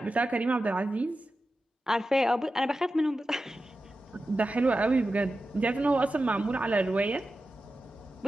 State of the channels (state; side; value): normal; both; correlation 0.92